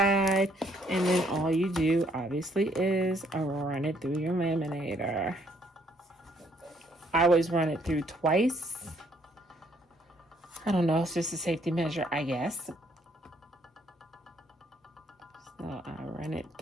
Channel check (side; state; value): both; normal; correlation 0.67